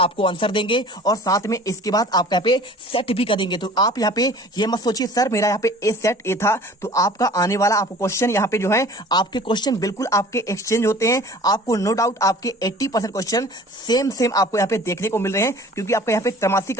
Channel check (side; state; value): both; normal; correlation 0.46